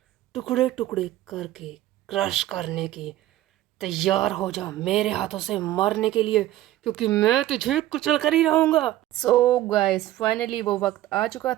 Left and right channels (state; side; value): quieter; left; 14.5 dB